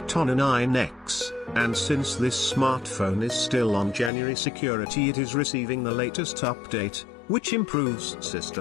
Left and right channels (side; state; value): right; drops out; at 4.1 s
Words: on an 9X, and since this smartphone is still on January security, it is receiving the latest update, which improves